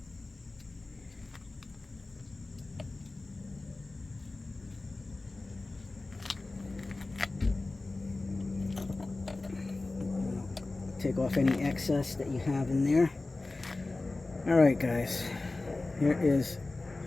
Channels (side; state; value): right; quieter; 3.2 dB